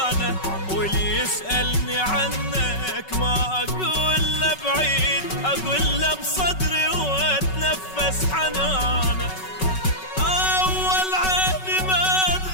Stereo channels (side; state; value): right; late; 5.3 ms